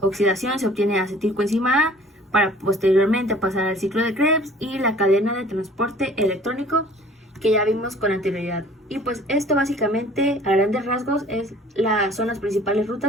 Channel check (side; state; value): both; normal; correlation 0.51